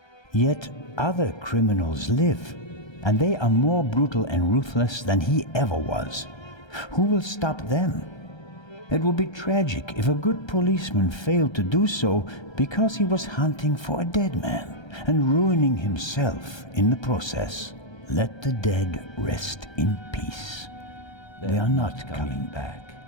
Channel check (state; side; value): late; right; 1.3 ms